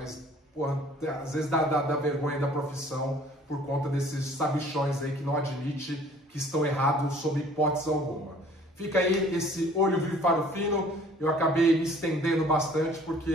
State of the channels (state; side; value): normal; both; correlation 0.53